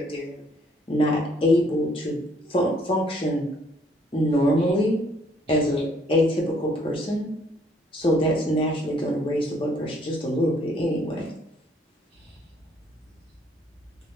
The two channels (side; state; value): both; normal; correlation 0.64